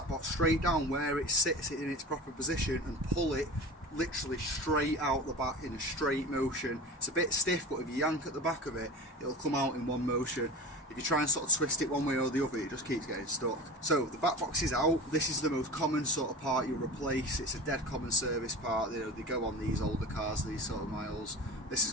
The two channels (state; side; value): normal; both; correlation 0.33